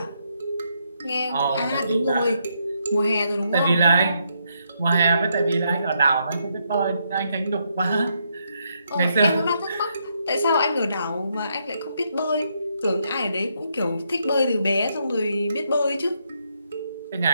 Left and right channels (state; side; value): inverted; both; correlation -0.77